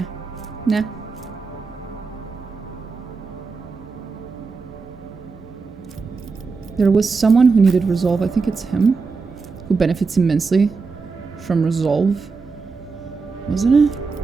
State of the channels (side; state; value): left; quieter; 4.5 dB